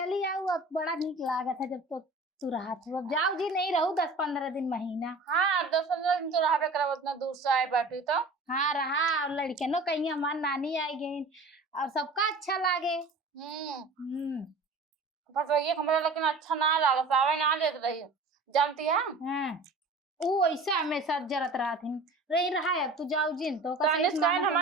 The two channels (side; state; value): left; quieter; 3.0 dB